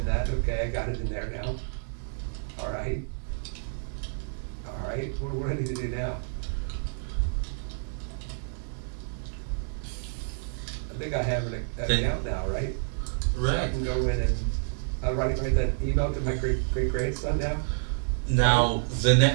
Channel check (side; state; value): left; silent; digital silence